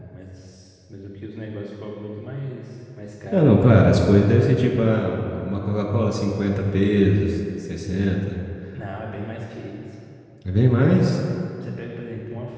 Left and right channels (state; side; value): identical; both; correlation 1.00